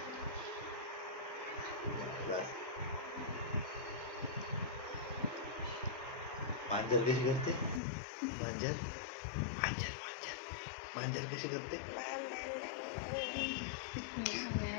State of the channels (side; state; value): right; drops out; at 7.8 s